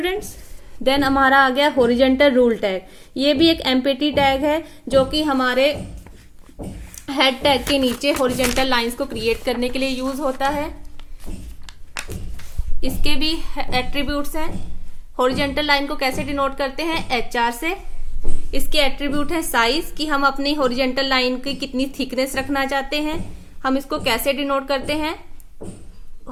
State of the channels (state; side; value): identical; both; correlation 1.00